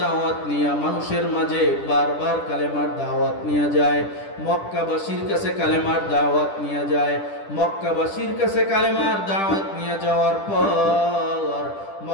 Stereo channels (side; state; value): right; late; 10 ms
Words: দাওয়াত নিয়া মানুষের মাঝে বারবার কালেমার দাওয়াত নিয়ে যায়। মক্কাবাসীর কাছে কালেমার দাওয়াত নিয়ে যায়। মক্কাবাসীর কাছে কালেমার দাওয়াত নিয়ে যাওয়ার পর